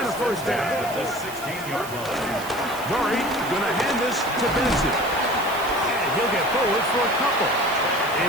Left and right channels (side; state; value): right; noise; hiss, 14 dB below the sound